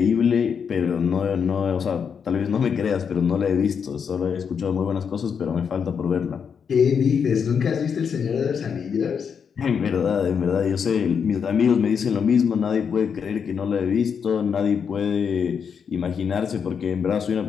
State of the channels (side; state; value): right; quieter; 6.8 dB